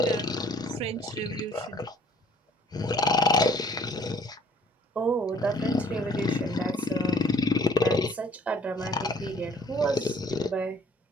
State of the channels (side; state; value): both; normal; correlation 0.58